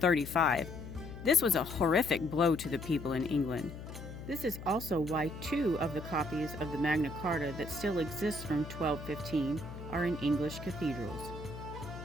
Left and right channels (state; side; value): noise; left; hum, 11 dB below the sound